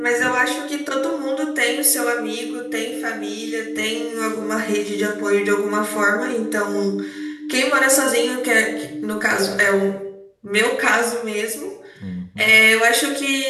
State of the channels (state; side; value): identical; both; correlation 1.00